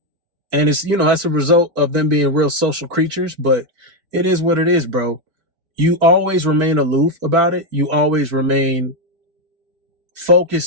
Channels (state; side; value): late; left; 4.5 ms